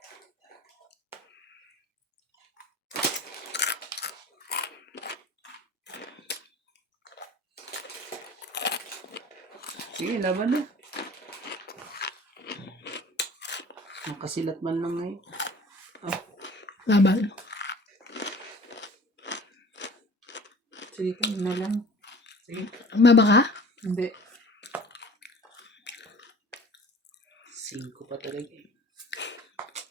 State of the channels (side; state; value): both; normal; correlation 0.46